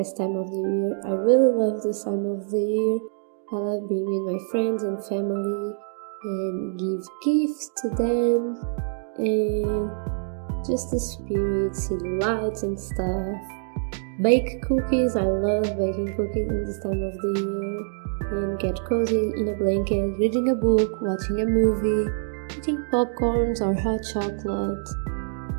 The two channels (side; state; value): left; silent; digital silence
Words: time of the year. I really love this time of the year. I love being with my friends and family and give gifts to them and just the spirit, see the lights and stuff. Bake cookies, I love baking cookies in this time of the year. And get cozy in a blanket, reading a book, watching a movie, eating popcorns or hot chocolate